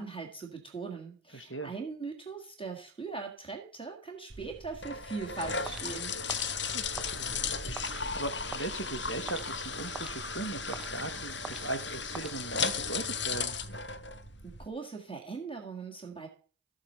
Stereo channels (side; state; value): both; normal; correlation 0.05